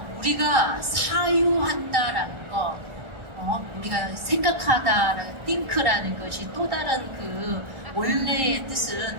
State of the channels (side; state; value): left; late; 1.4 ms